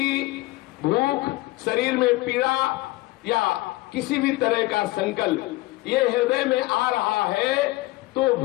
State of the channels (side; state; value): right; quieter; 20.2 dB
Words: भूख, शरीर में पीड़ा या किसी भी तरह का संकल्प ये हृदय में आ रहा है तो